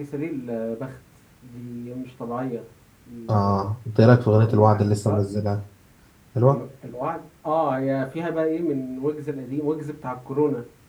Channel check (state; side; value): identical; both; correlation 1.00